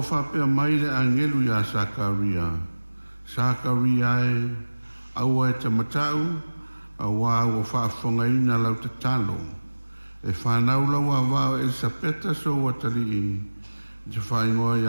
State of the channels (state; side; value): inverted; both; correlation -1.00